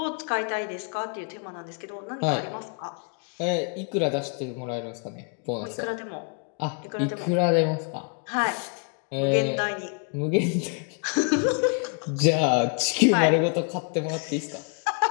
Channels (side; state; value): right; quieter; 38.3 dB